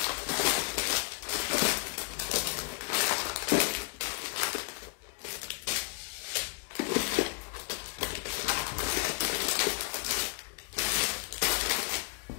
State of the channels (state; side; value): quieter; right; 33.2 dB